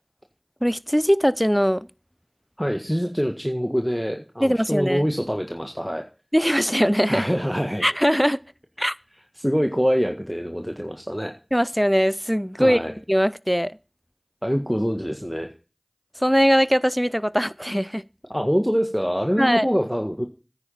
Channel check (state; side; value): identical; both; correlation 1.00